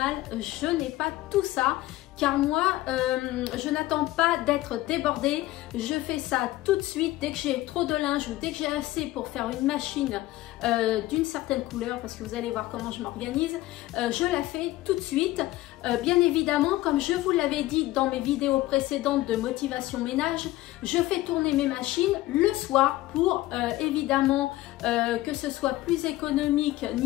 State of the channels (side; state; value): right; quieter; 16.9 dB